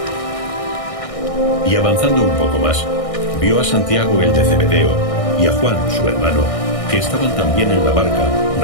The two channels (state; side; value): late; right; 1.6 ms